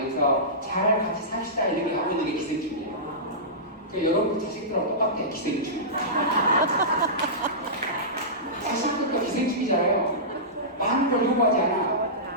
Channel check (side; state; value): both; normal; correlation -0.18